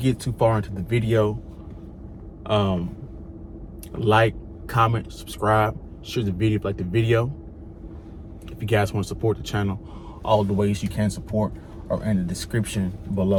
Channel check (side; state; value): both; identical; correlation 1.00